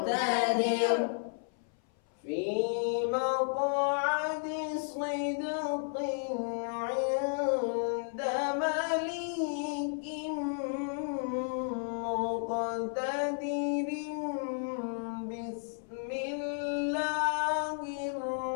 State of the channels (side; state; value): right; silent; 56 dB below the other